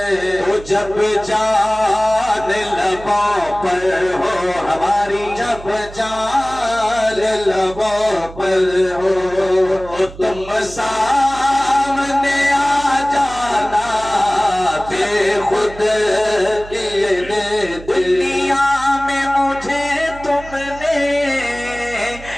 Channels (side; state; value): right; noise; hum, 16 dB below the sound